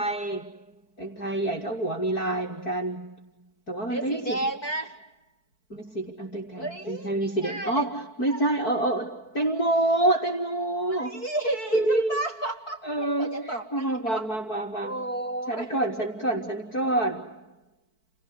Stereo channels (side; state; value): right; late; 4.6 ms